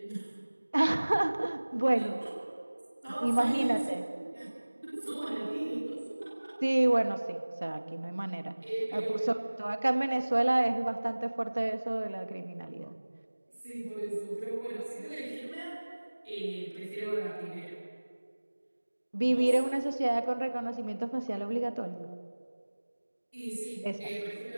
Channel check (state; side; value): inverted; both; correlation -1.00